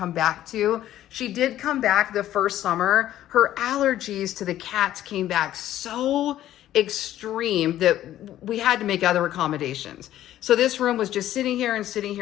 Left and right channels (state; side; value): quieter; right; 12.9 dB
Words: back to. She did come back the first summer. Her allergies to the cats came back so extreme that we had to make other accommodations. So this room was just sitting here